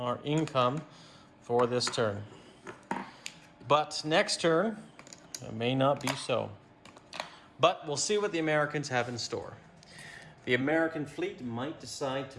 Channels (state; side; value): identical; both; correlation 1.00